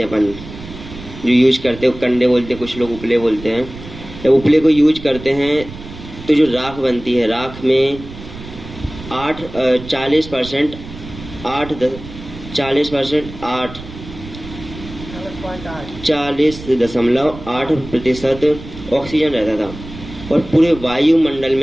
हैं अपन, जो यूज करते हैं, कंडे बोलते हैं, कुछ लोग उपले बोलते हैं, जब उपले को यूज करते हैं तो जो राख बनती है, राख में 40% 40.8% ऑक्सीजन रहता था। और पूरे वायुमंडल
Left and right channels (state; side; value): noise; right; rumble, 14 dB below the sound